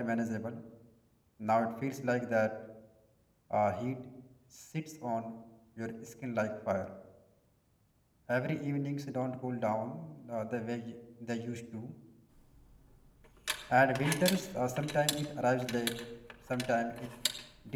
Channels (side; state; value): both; identical; correlation 1.00